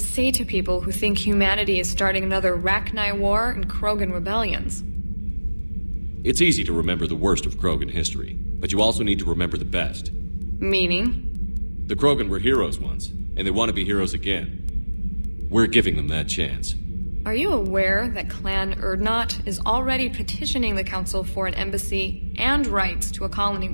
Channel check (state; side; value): inverted; both; correlation -1.00